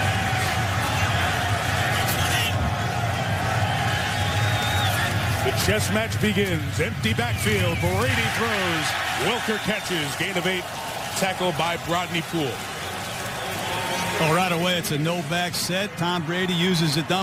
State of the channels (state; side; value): identical; both; correlation 1.00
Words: Chess match begins. Empty backfield. Brady throws. Welker catches. Gain of 8. Tackle by Brodney Poole. Well, right away, it's a no-back set. Tom Brady uses a